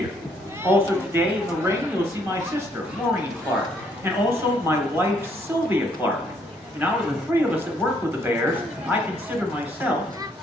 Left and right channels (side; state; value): both; normal; correlation 0.69